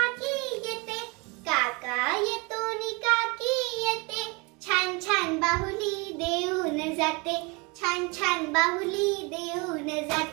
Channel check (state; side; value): quieter; left; 28.5 dB